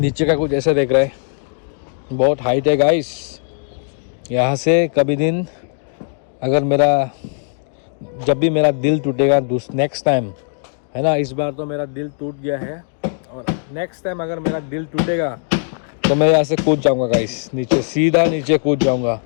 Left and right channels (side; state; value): right; silent; 65 dB below the other